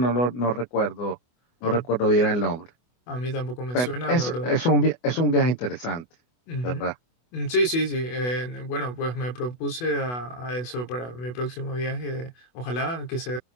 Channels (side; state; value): right; late; 24 ms